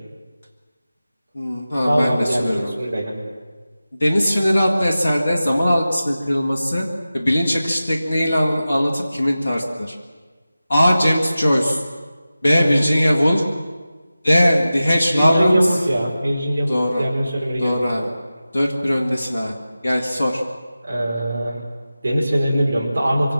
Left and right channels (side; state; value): both; inverted; correlation -0.95